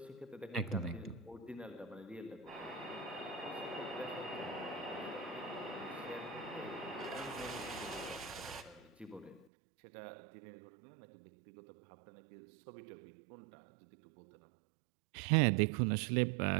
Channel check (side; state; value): left; drops out; at 9.5 s